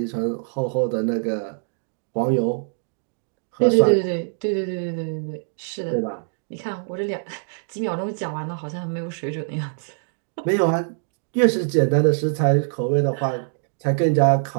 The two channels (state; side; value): silent; left; digital silence